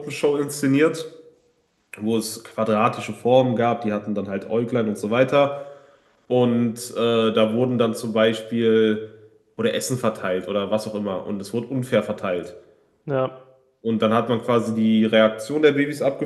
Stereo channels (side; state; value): both; identical; correlation 1.00